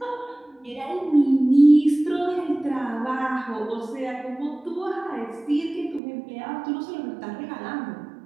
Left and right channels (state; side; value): drops out; left; at 6.0 s